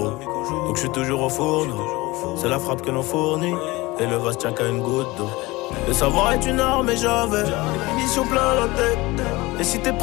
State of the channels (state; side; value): quieter; right; 21.5 dB